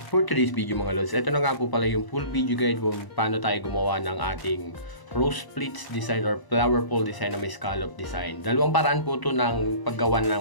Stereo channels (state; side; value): late; right; 1.0 ms